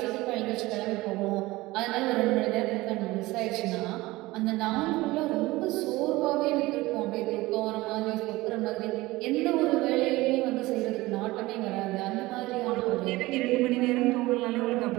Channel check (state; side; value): quieter; left; 19.7 dB